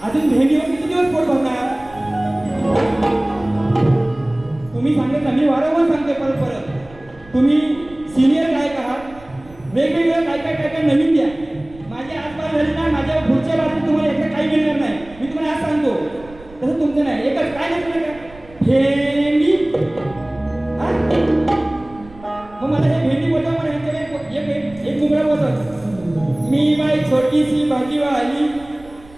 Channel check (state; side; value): noise; right; rumble, 22 dB below the sound